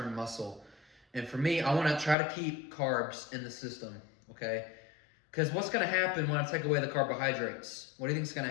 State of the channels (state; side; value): drops out; right; at 2.1 s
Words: muscle. And for me, I want to try to keep carbs in the system, okay? Because what's going to happen when I take away the carbohydrates? What do you think is going